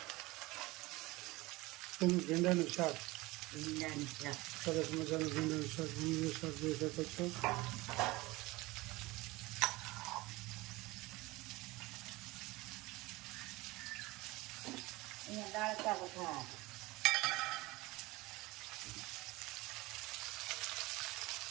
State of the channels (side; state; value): left; quieter; 21.2 dB